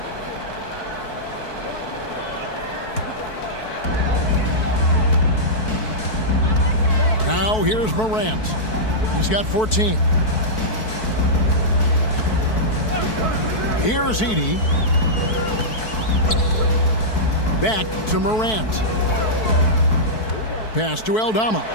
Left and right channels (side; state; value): right; late; 4.6 ms